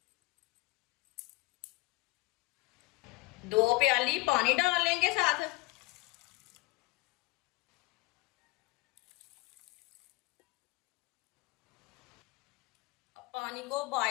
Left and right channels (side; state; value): right; quieter; 23.7 dB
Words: दो प्याली पानी डाल लेंगे साथ। अब पानी को